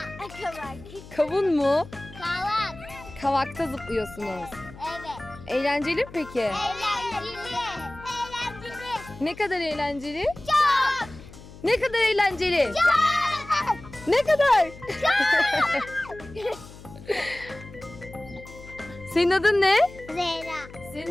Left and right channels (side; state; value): left; noise; hum, 18 dB below the sound